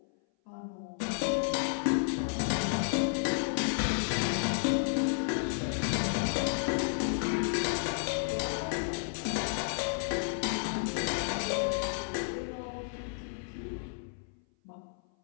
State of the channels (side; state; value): right; silent; 56 dB below the other